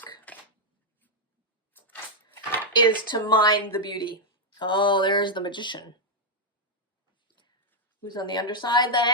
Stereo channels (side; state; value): both; normal; correlation -0.02